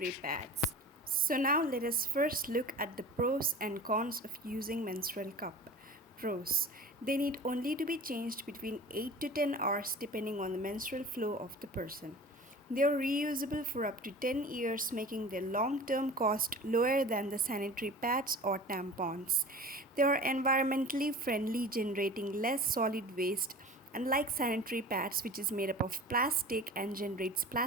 pads. So now let us first look at the pros and cons of using menstrual cup. Pros. They need only to be changed between 8 to 10 hours depending on the menstrual flow of the person. They are reusable for up to 10 years, making their long term cost lower than the sanitary pads or tampons. They are environmentally friendly, generating less solid waste. Unlike sanitary pads, which is made up of plastic and generates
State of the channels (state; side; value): normal; both; correlation 0.39